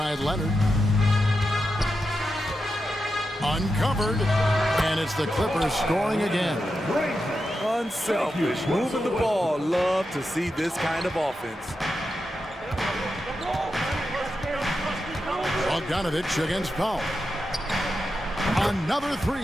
Leonard. Uncovered. And it's the Clippers scoring again. Unselfish. Moving the ball. Love to see this kind of offense. Bogdanovich against Powell. Another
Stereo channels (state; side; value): normal; both; correlation 0.88